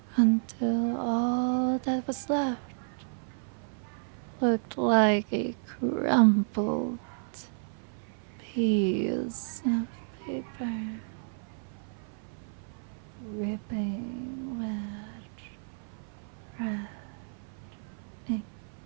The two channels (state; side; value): silent; left; 55 dB below the other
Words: until all that was left looked like a crumpled piece of paper, dripping with